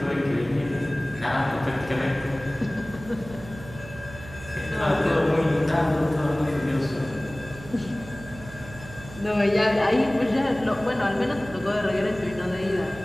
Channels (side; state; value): right; noise; hum, 16 dB below the sound